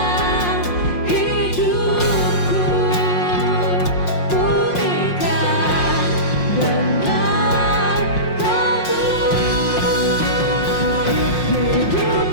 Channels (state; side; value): late; right; 5.6 ms